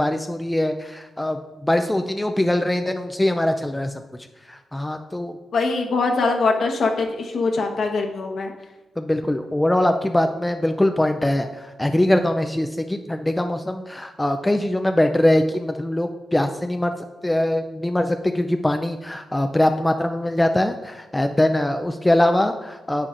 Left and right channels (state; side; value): normal; both; correlation 0.96